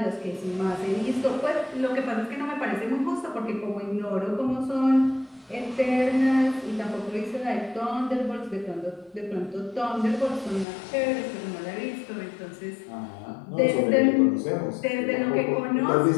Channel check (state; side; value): drops out; right; at 10.7 s